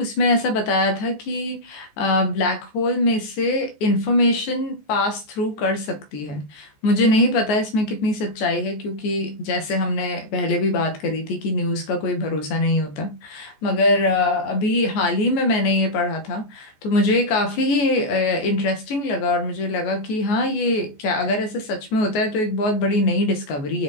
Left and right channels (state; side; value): late; right; 14 ms